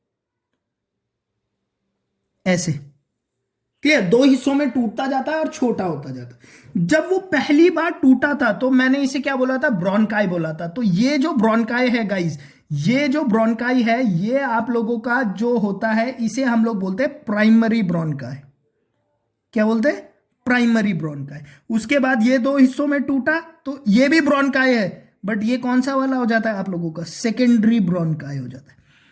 ऐसे। क्लियर, दो हिस्सों में टूटता जाता है और छोटा होता जाता है। जब वो पहली बार टूटा था तो मैंने इसे क्या बोला था, ब्रोंकाई बोला था। तो ये जो ब्रोंकाई है गाइस, ये जो ब्रोंकाई है, ये आप लोगों का जो होता है, इसे हम लोग बोलते हैं प्राइमरी ब्रोंकाई। क्या बोलते हैं, प्राइमरी ब्रोंकाई। उसके बाद ये दो हिस्सों में टूटा तो ये भी ब्रोंकाई है, बट ये कौन सा वाला हो जाता है आप लोगों का, सेकेंडरी ब्रोंकाई हो जाता है।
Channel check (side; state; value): both; identical; correlation 1.00